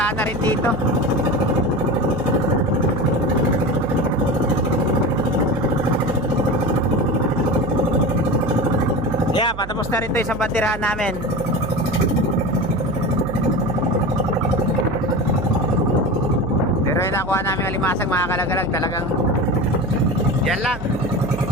na rin dito. Yeah, patapos na rin to isang bandirahan namin. Pero yung nakuha namin alimasag mga kalagalag, talagang yan lang.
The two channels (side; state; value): right; noise; hum, 12 dB below the sound